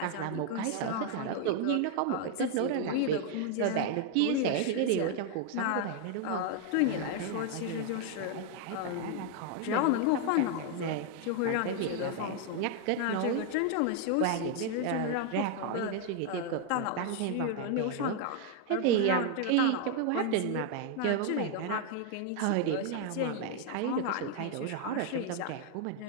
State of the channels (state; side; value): different; both; correlation 0.00